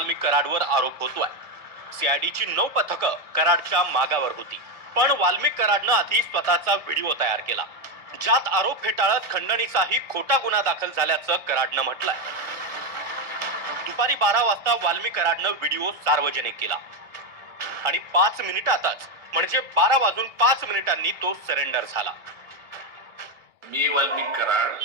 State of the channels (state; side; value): late; left; 1.4 ms